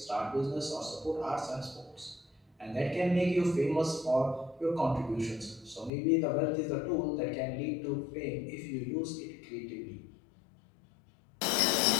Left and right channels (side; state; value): right; drops out; at 5.9 s